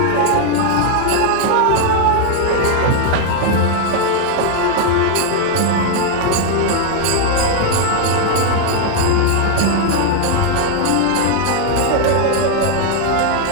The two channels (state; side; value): different; both; correlation 0.00